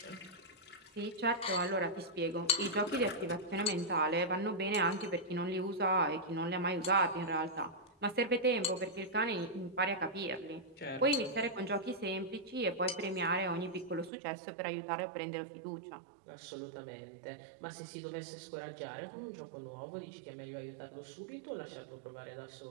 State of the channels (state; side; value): drops out; left; at 14.1 s